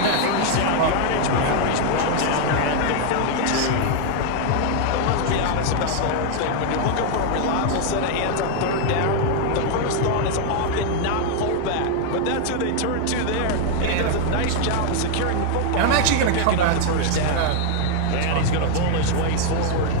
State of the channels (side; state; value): both; different; correlation 0.00